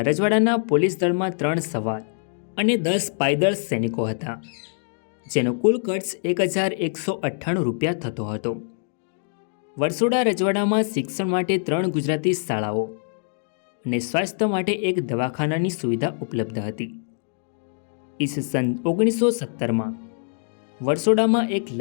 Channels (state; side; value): silent; right; digital silence